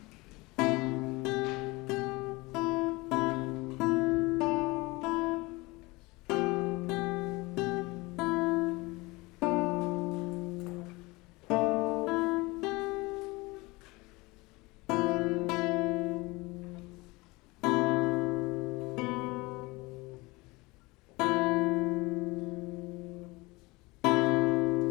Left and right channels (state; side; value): quieter; right; 23.5 dB